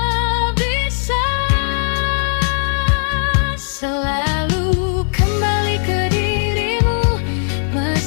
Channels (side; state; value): right; silent; digital silence